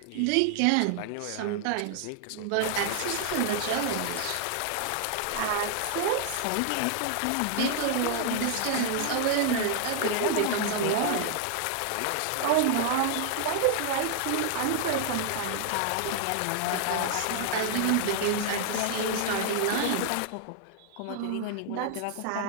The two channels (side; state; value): both; different; correlation 0.00